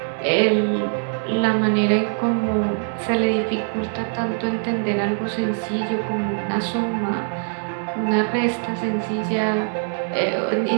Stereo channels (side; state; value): left; silent; 63 dB below the other